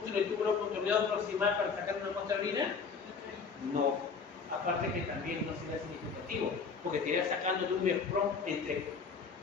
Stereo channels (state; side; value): quieter; right; 5.3 dB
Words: en el tubo contorneado proximal para sacar una muestra de orina. No. Aparte que también no sería significativo, porque te irías sacando de un nefrón entre